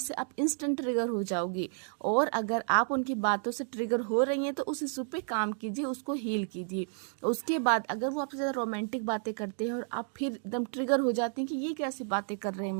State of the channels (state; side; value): silent; left; 57 dB below the other